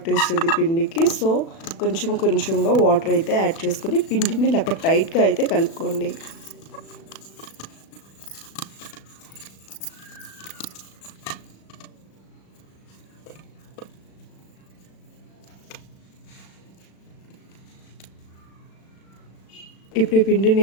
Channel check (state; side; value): late; right; 36 ms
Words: పిండికి. సో కొంచెం కొంచెంగా వాటర్ అయితే యాడ్ చేసుకొని పిండిని ఇలా టైట్గా అయితే కలుపుకోండి. ఇప్పుడు ఈ